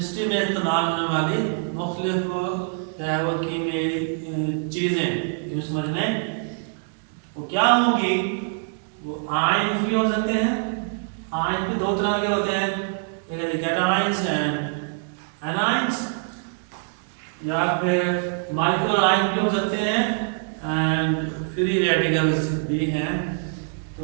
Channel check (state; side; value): silent; left; 62 dB below the other